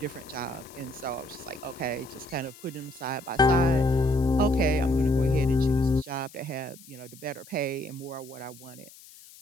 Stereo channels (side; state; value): left; noise; hiss, 21 dB below the sound